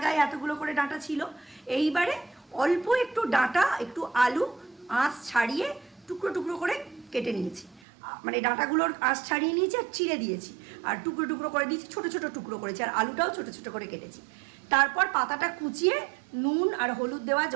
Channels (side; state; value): left; drops out; at 7.8 s